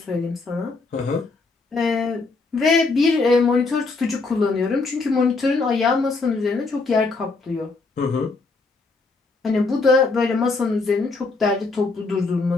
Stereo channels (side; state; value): right; quieter; 3.8 dB